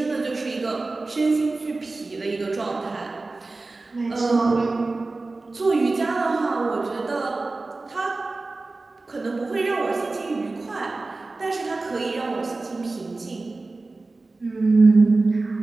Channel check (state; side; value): quieter; left; 3.4 dB